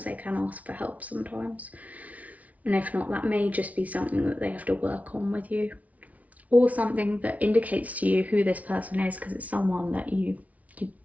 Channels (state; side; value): late; left; 0.069 ms